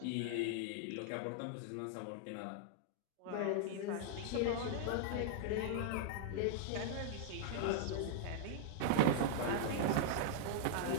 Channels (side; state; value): both; different; correlation 0.00